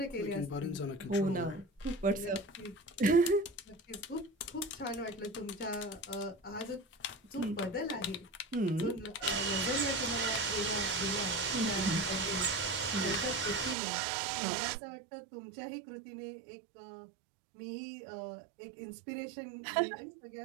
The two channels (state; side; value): drops out; left; at 13.8 s